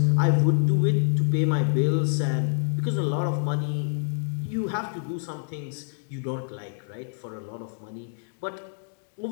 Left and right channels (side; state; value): right; silent; digital silence